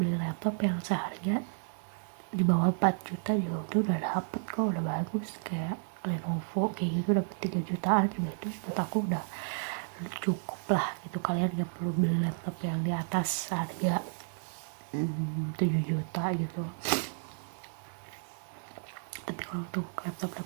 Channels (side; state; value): left; silent; digital silence